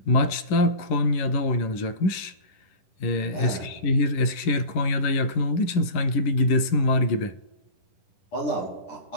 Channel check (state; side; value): late; right; 10 ms